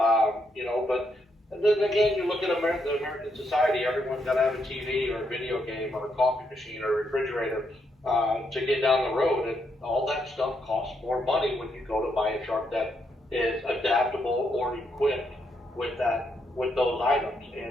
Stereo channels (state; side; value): normal; both; correlation 0.78